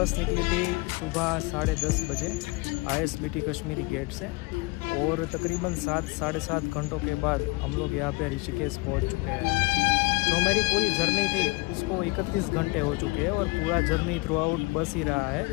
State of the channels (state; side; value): quieter; right; 25.4 dB